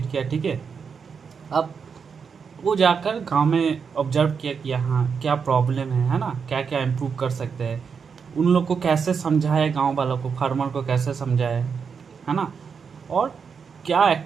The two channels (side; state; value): left; quieter; 6.1 dB